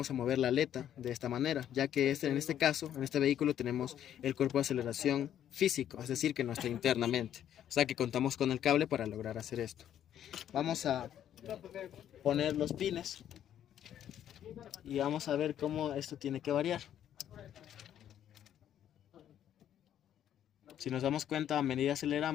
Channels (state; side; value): quieter; right; 10.5 dB